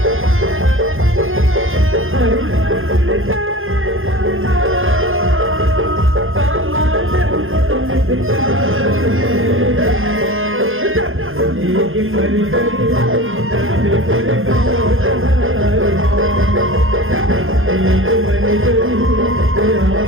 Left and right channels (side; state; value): left; late; 0.59 ms